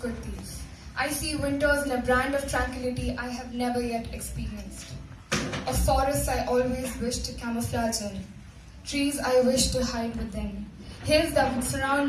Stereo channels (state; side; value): identical; both; correlation 1.00